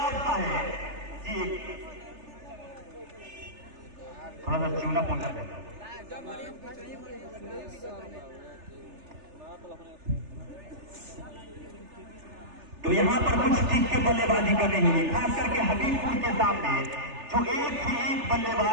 का है जी। थोड़ा सा चूना पहुंचा देता तो यहाँ पर कुछ ठीक के बल्लेबाजी कर रही है, खास करके हबीबपुर के सामने जो एक से एक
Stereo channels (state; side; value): late; left; 3.4 ms